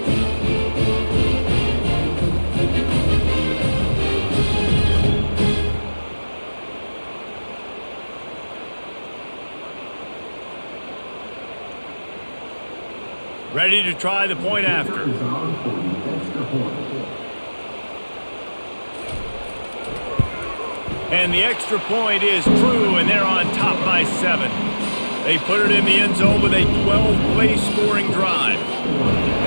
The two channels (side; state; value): both; inverted; correlation -1.00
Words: Ready to try the point after. And the extra point is true, and they're on top by 7. They put it in the end zone with a 12-play scoring drive.